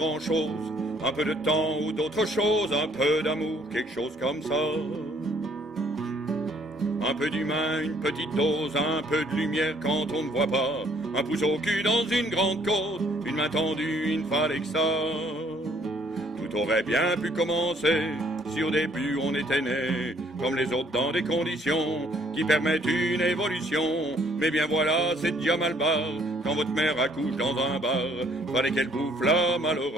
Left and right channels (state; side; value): normal; both; correlation 0.63